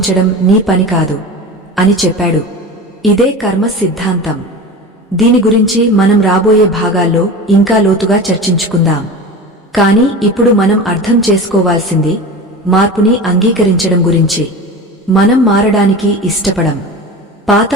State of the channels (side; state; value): both; normal; correlation 0.31